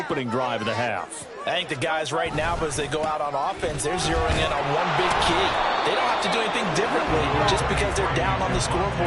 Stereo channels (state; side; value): identical; both; correlation 1.00